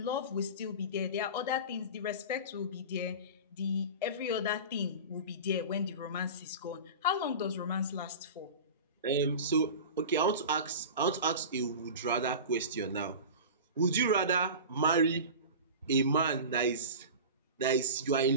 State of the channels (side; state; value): both; inverted; correlation -0.32